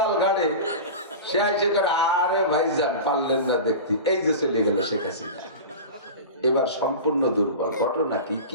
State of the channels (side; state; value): both; inverted; correlation -0.30